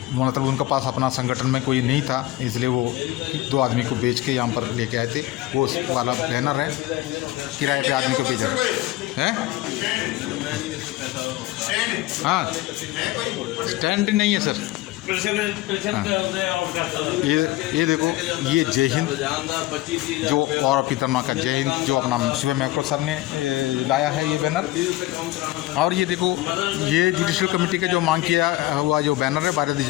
मतलब उनके पास अपना संगठन में कोई नहीं था, इसलिए वो 2 आदमी को बेच के यहाँ पर लेके आए थे। वो वाला बैनर है, किराए पे आदमी को भेजा है। हाँ, स्टैंड नहीं है सर। ये देखो, ये जय हिंद जो और पितरमा का जय हिंद जो अपना शिव मैक्रो सर ने लाया है ये बैनर। और ये देखो, ये जुडिशियल कमेटी का जो मांग किया हुआ जो बैनर है, भारतीय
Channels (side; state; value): right; quieter; 17.3 dB